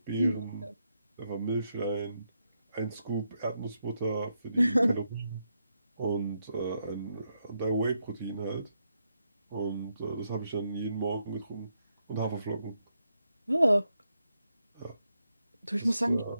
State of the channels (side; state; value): both; inverted; correlation -0.82